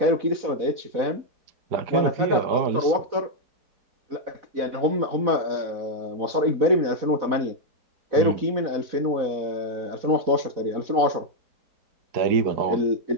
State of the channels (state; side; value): late; left; 4.1 ms